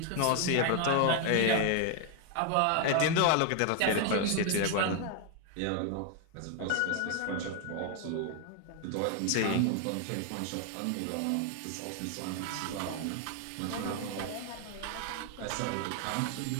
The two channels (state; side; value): different; both; correlation 0.00